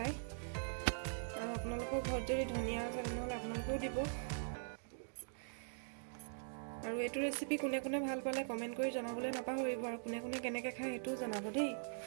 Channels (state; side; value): silent; left; digital silence